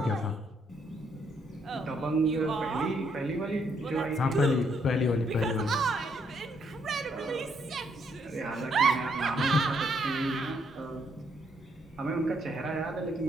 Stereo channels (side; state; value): both; normal; correlation 0.72